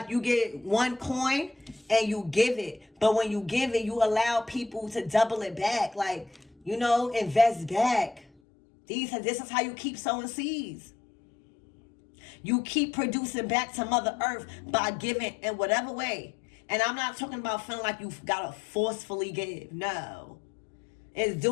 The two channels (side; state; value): right; drops out; at 8.2 s